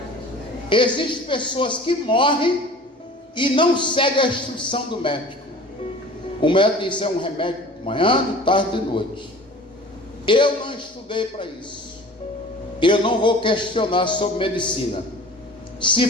Existem pessoas que morrem e não seguem a instrução do médico. O médico diz: é um remédio de manhã, de tarde, de noite. Eu não estudei para isso. Eu não vou questionar sobre medicina.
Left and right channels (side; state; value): both; normal; correlation 0.43